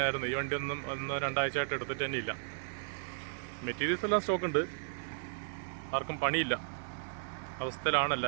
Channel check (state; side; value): silent; left; digital silence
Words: ഈ വണ്ടി ഒന്നും 1-2 ആഴ്ചയായിട്ട് എടുത്തിട്ട് തന്നെ ഇല്ല. മെറ്റീരിയൽസ് എല്ലാം സ്റ്റോക്ക് ഉണ്ട്, ആർക്കും പണിയില്ല അവസ്ഥയിലാണ്